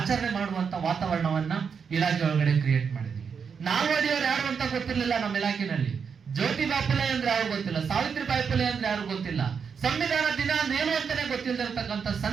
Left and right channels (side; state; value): left; quieter; 6.3 dB